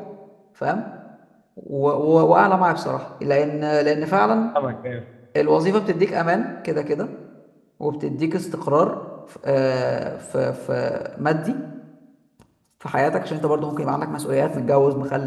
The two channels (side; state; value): both; identical; correlation 1.00